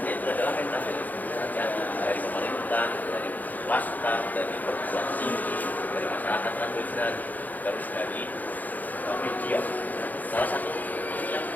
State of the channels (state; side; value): late; right; 0.082 ms